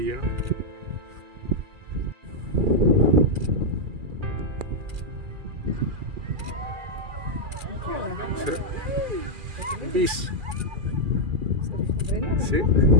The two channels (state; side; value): late; left; 2.4 ms